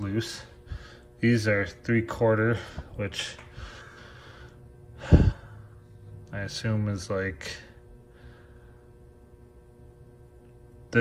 These are 3/4, which I assume is like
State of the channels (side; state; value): both; identical; correlation 1.00